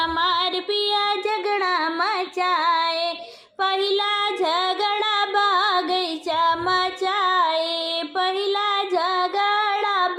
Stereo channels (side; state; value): both; identical; correlation 1.00